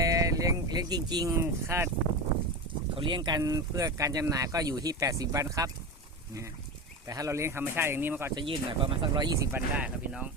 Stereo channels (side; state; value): both; normal; correlation 0.22